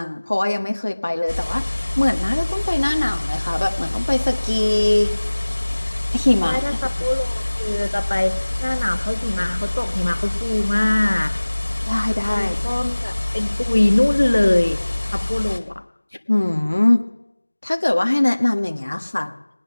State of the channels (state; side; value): inverted; both; correlation -1.00